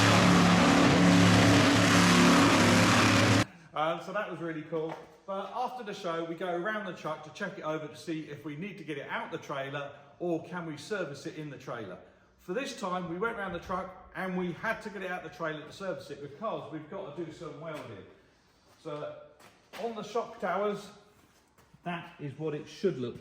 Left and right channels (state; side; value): identical; both; correlation 1.00